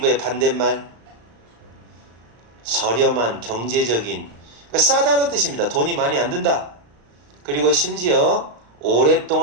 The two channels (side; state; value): left; late; 35 ms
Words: 반대말 저렴한 경제적인 그러니까 싸다는 뜻입니다. 돈이 많이 안 든다. 그리고 심지어